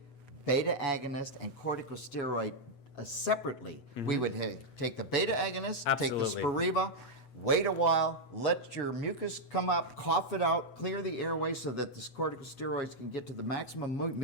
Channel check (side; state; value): right; late; 8.0 ms